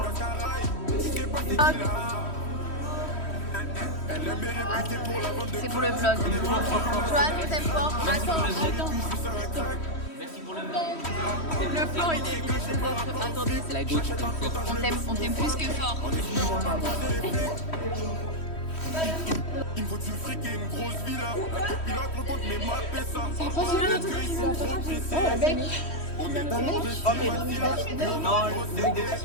C'est pour le vlog. Joanne, on t'aime fort. Attends. Le plan, il est Attendez, C'est la gauche. on t'aime plus que fort. Il me faut du fric et une grosse villa. La copilote recompte mes maps et ça. On est dans le Non,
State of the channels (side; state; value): right; late; 3.1 ms